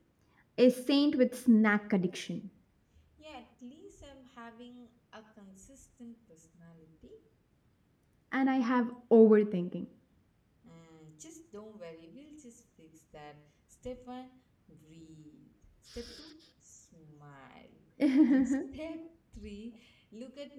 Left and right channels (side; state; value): both; identical; correlation 1.00